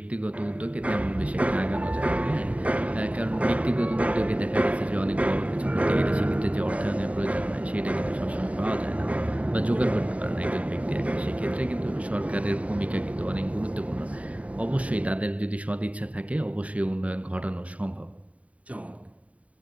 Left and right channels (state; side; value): late; left; 0.067 ms